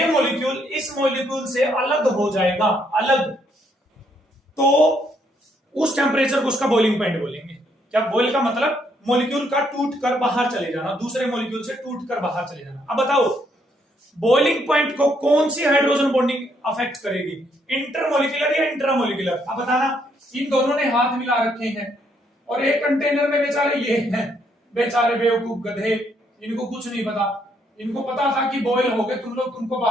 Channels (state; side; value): normal; both; correlation 0.72